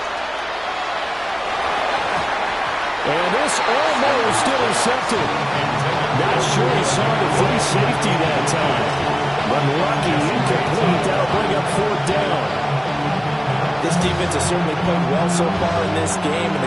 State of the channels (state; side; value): noise; right; hum, 24 dB below the sound